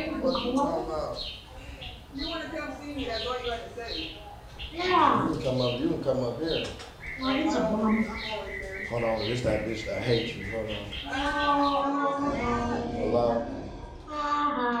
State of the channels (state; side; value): identical; both; correlation 1.00